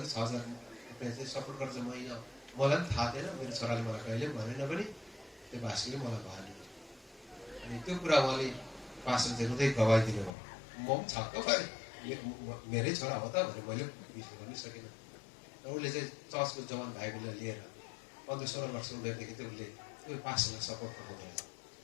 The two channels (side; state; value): right; drops out; at 10.3 s